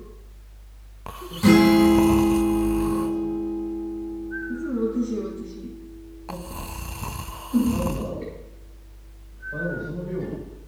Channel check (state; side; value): identical; both; correlation 1.00